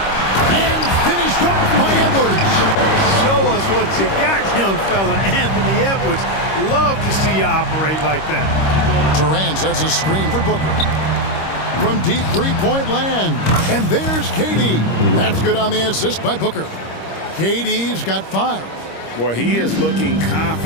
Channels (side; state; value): right; late; 26 ms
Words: And finished off by Edwards. Show us what you got, young fella. Anthony Edwards. Love to see you operate like that. Durant sets a screen for Booker. From deep three-point land. And there's KD. That's good on the assist by Booker. KD's got 5. Boy, he is looking